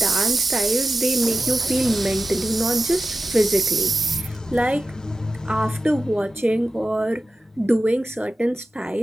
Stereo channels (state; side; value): normal; both; correlation 0.92